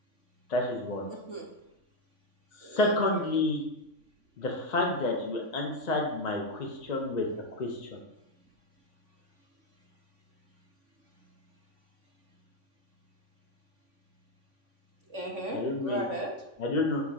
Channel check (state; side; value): late; left; 3.6 ms